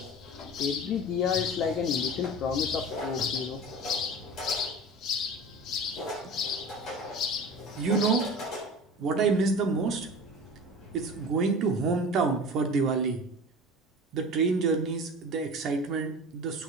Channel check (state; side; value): normal; both; correlation 0.35